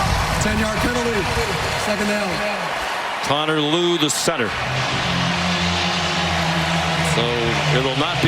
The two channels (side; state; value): both; identical; correlation 1.00